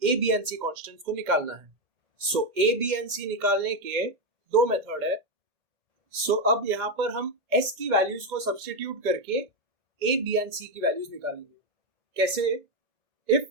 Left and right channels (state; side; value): late; left; 2.1 ms